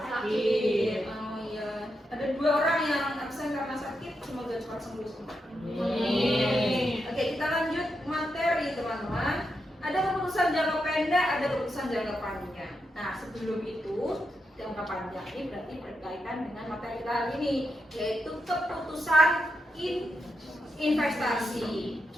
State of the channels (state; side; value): normal; both; correlation 0.85